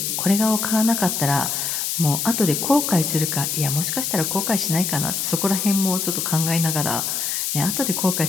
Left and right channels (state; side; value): noise; left; hiss, 1 dB below the sound